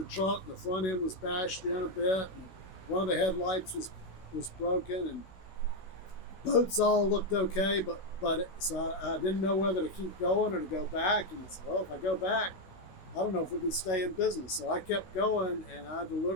truck, and the front end was bashed in a bit, and one of the headlights was broken, and boats all looked okay, but so I didn't know whether to keep going or to go back. And I said, well, if I go back, I don't know if we can stay in business. So I kept going, and I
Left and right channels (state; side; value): late; right; 16 ms